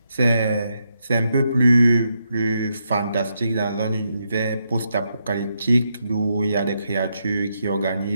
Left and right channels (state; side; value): inverted; both; correlation -0.81